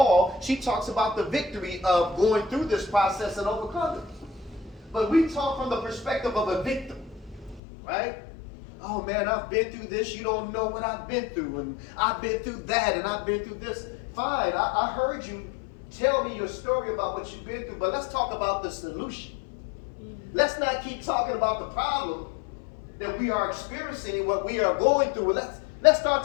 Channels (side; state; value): right; drops out; at 7.6 s